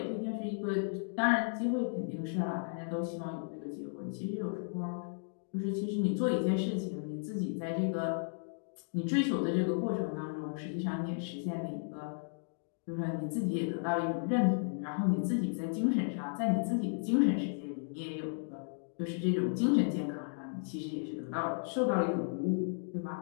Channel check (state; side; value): silent; right; digital silence